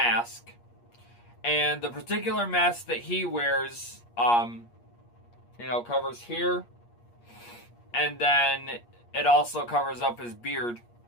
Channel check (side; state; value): right; late; 8.5 ms